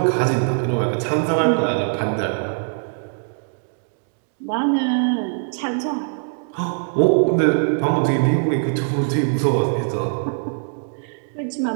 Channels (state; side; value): silent; left; 64 dB below the other